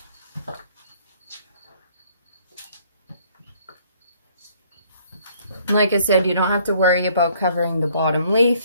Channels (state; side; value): inverted; both; correlation -0.61